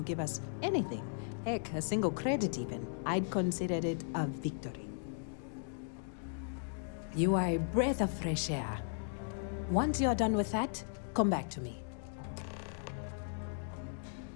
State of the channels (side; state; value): right; silent; digital silence